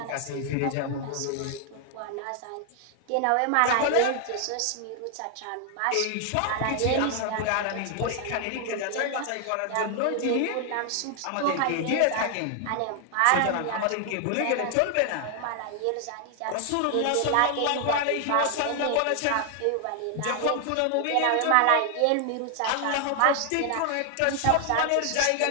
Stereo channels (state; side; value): different; both; correlation 0.00